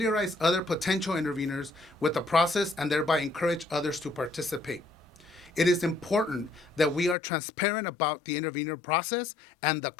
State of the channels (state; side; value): drops out; right; at 7.2 s